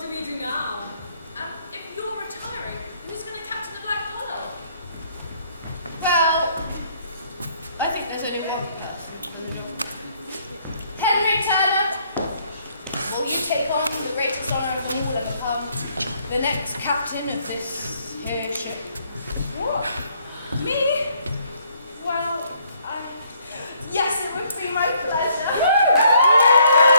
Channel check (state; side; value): inverted; both; correlation -0.66